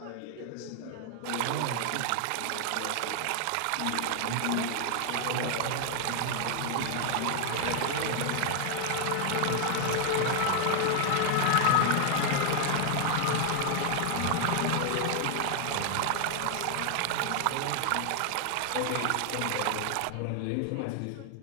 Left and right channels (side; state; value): both; different; correlation 0.00